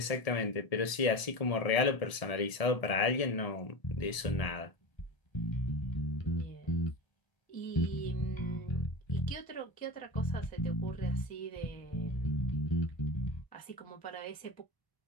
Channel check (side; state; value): right; late; 1.0 ms